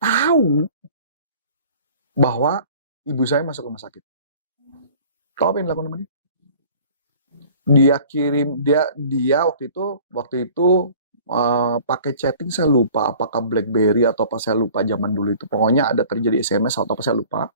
bahwa ibu saya masuk rumah sakit. Tahu apa yang dilakukan sama dia? Dia kirim, dia waktu itu pakai chatting, saya lupa apakah BlackBerry atau apa, saya lupa zaman dulu itu. Pokoknya ada terjadi SMS atau apa saya lupa.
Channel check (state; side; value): inverted; both; correlation -0.48